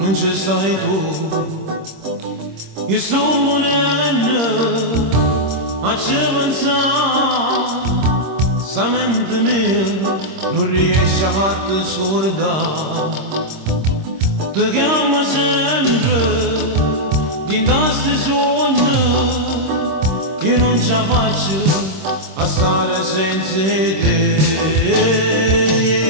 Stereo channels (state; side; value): late; left; 26 ms